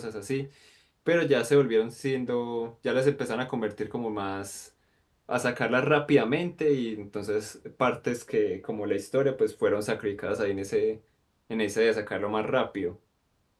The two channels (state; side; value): identical; both; correlation 1.00